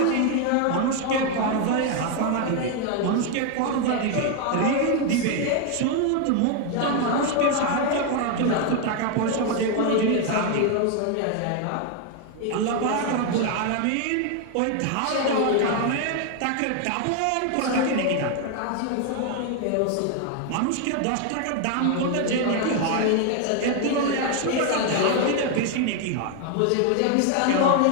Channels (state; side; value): different; both; correlation 0.01